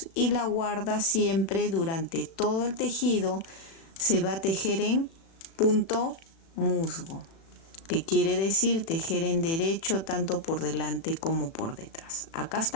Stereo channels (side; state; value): right; late; 36 ms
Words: y la guarda siempre durante todo el tejido se va a tejer en punto musgo, que quiere decir tejer en derecho tanto por delante como por detrás. Acá